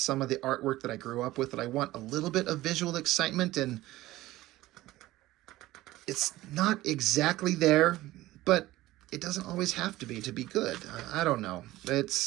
of the artwork that I grew up with, that I want a little bit of visual excitement, and it's not exactly there, but it doesn't always have to be good. I don't know. We're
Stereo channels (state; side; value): quieter; left; 16.9 dB